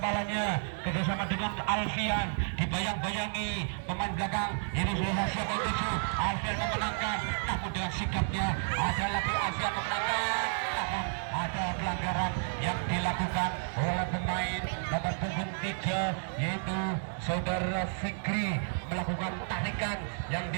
kerjasama dengan Alfian, dibayang-bayangi pemain belakang ini sudah hasil menuju Alfian memenangkan, namun dengan sikapnya ada lagi Alfian memenangkan, namun ada pelanggaran yang dilakukan oleh pemain nomor punggung 3 yaitu saudara Fikri, melakukan tarikan yang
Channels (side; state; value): left; silent; digital silence